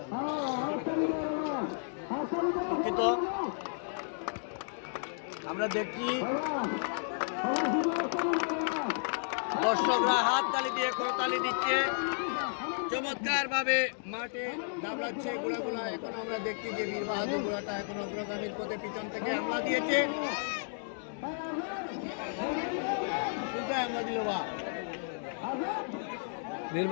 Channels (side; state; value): right; silent; digital silence